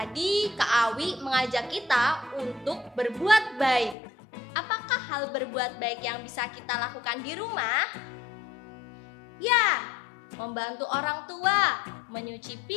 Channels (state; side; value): drops out; right; at 4.0 s